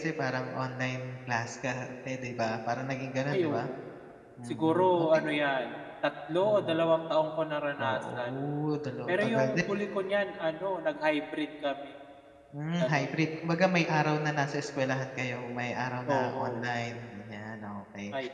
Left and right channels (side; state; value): both; identical; correlation 1.00